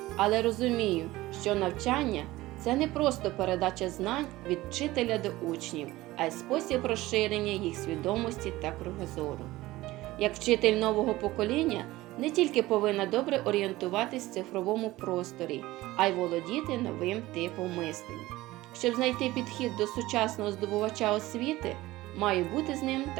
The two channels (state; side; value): quieter; left; 18.0 dB